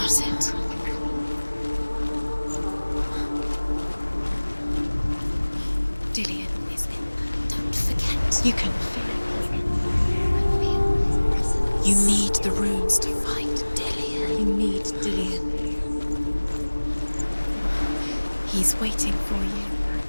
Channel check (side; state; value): both; inverted; correlation -1.00